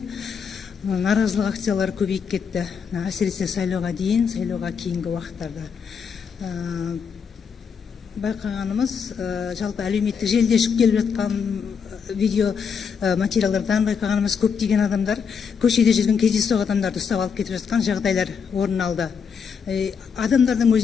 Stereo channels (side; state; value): right; quieter; 6.4 dB